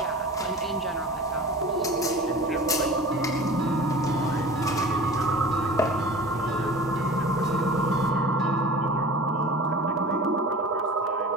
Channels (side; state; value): both; normal; correlation 0.39